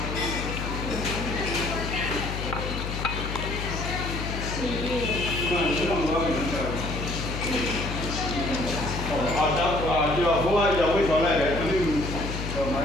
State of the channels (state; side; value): noise; left; hum, 5 dB below the sound